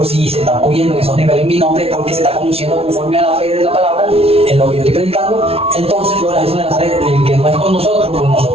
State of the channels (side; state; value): left; late; 0.29 ms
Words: si se está moviendo en esos niveles en mi nombre, porque se está conduciendo conforme a la fe de la palabra, en lo que yo estoy predicando, entonces yo la Jesús de Nazaret, el que no es con nosotros